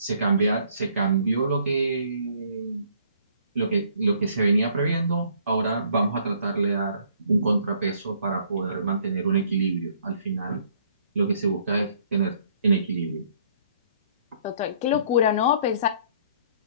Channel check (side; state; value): both; inverted; correlation -0.62